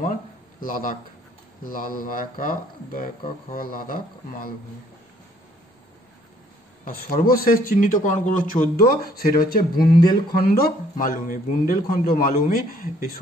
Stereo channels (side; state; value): both; normal; correlation 0.63